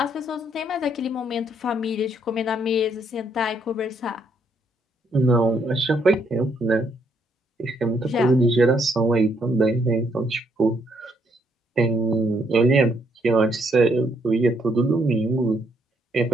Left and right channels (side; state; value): both; normal; correlation 0.72